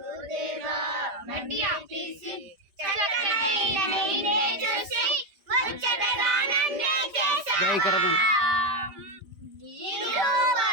మట్టియా తీసి చక్కనైన నిన్నే చూసి ముచ్చటగా నన్నే చేసావా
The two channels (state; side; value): late; left; 5.0 ms